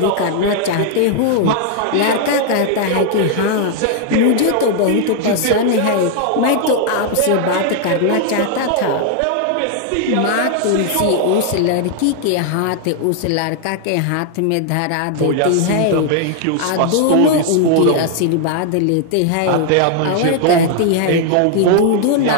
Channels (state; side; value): different; both; correlation 0.00